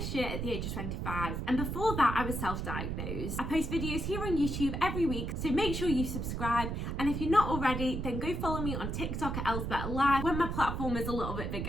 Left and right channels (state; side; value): noise; right; rumble, 3 dB below the sound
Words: year at the age of 25, and before that I was self-diagnosed. I post videos here on YouTube every week, so make sure you subscribe, and if you're not already, then go follow me on TikTok at Elle's Better Life when my platform is a little bit